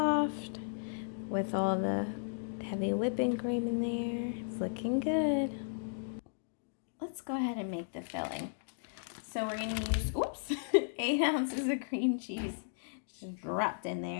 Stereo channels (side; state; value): right; silent; digital silence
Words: with all the heavy whipping cream in there. It's looking good. Let's go ahead and make the filling. So we're gonna use, 8 ounces of cream cheese just dropped in